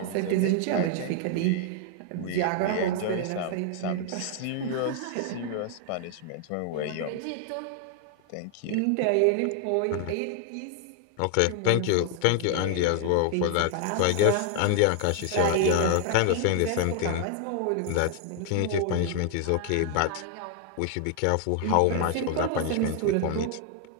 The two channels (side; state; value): both; different; correlation 0.00